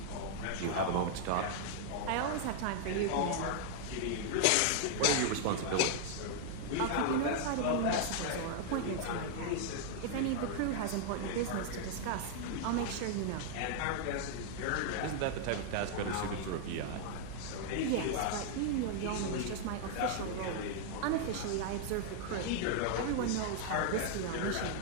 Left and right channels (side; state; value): both; different; correlation 0.00